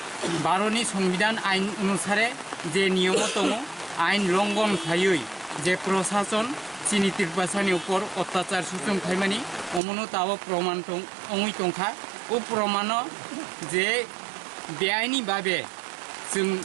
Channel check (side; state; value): left; drops out; at 9.8 s